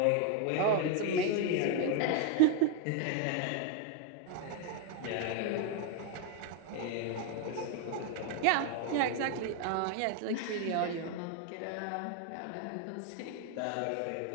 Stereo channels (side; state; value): both; different; correlation 0.01